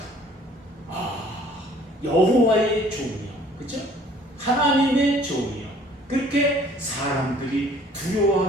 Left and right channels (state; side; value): normal; both; correlation 0.55